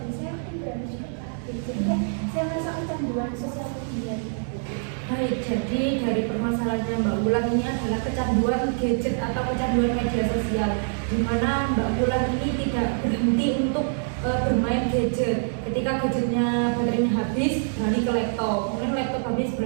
saya mungkin beralih juga ke HP. Jadi kayak saya merasa kecanduan sosial media gitu. Baik, jadi dari permasalahannya Mbak Wulan ini adalah kecanduan gadget atau kecanduan media sosial, di mana Mbak Wulan ini tidak berhenti untuk bermain gadget. Ketika gadgetnya baterainya habis, beralih ke laptop, kemudian laptop habis,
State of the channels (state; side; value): silent; left; digital silence